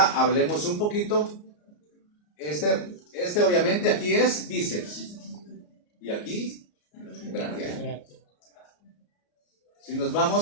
hablemos un poquito. Este obviamente aquí es bíceps y aquí braquial. Si nos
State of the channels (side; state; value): right; late; 34 ms